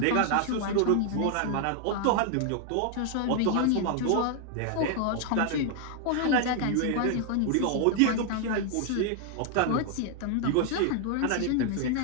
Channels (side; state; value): both; different; correlation 0.00